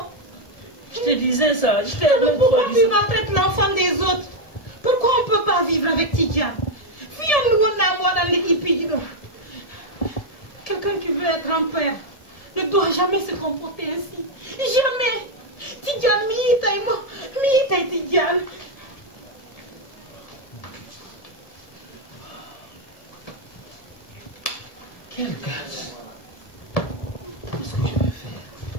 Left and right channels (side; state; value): right; late; 1.7 ms